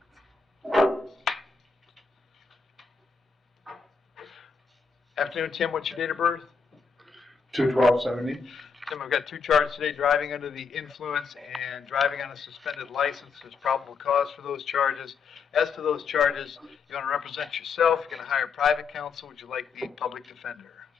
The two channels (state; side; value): quieter; right; 5.3 dB